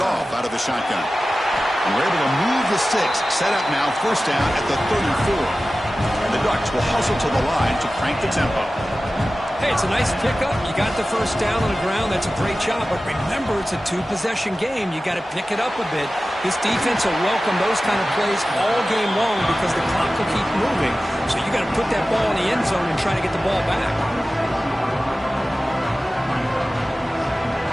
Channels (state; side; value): normal; both; correlation 0.96